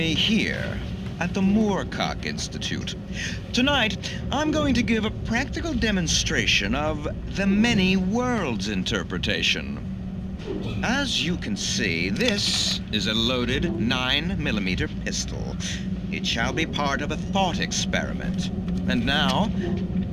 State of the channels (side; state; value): both; identical; correlation 1.00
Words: here at the Moorcock Institute. Tonight, I'm going to give a practical demonstration of the many worlds interpretation. As you can see, this is a loaded 9mm pistol. It shall be part of a thought experiment. And now,